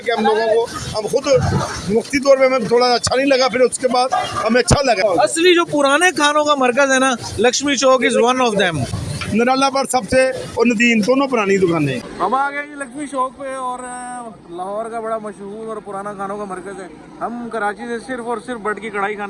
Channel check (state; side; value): identical; both; correlation 1.00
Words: हम लोगों को, हम खुद मुफ्ती तौर पे हमें थोड़ा अच्छा नहीं लगा, फिर उसके बाद हमें अच्छा लगा। असली जो पुराने खानों का मरकज है ना, Lakshmi Chowk is one of them. निराला पर सबसे और नदीम दोनों पुरानी दुकानें। हम आ गए जी लक्ष्मी चौक पे और लाहौर का बड़ा मशहूर और पुराना खानों का मरकज है। हम कराची से सिर्फ और सिर्फ बट की कढ़ाई